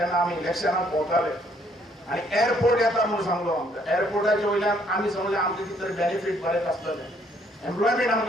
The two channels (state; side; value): normal; both; correlation 0.66